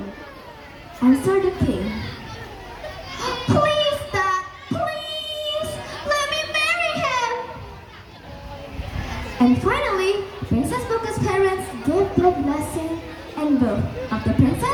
Answered the king. Please, Dad, please, let me marry him. And finally, Princess Pukes' parents gave their blessing, and both of the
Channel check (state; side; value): identical; both; correlation 1.00